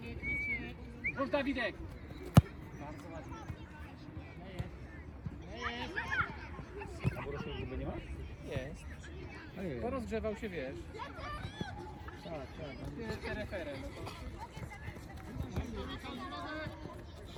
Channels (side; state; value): both; identical; correlation 1.00